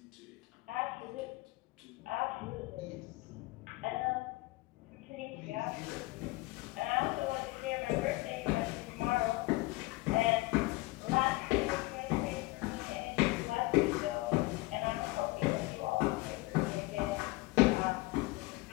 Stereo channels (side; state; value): right; quieter; 21.5 dB